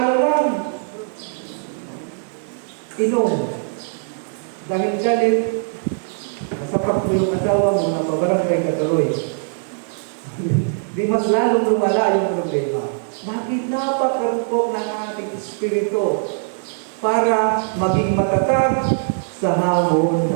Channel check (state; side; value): silent; left; 65 dB below the other